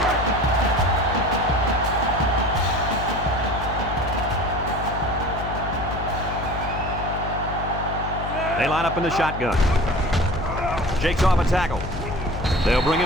They line up in the shotgun. Shakes off a tackle. They'll bring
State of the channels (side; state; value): left; noise; hum, 7 dB below the sound